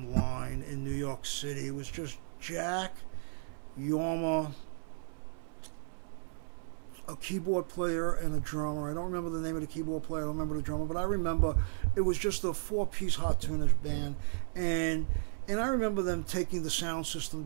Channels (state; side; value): silent; left; 55 dB below the other